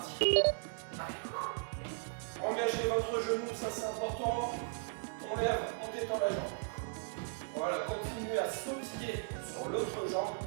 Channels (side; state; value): left; silent; 53 dB below the other